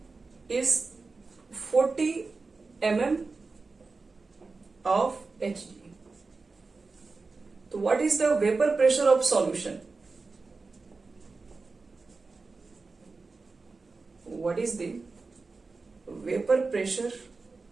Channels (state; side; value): quieter; left; 4.0 dB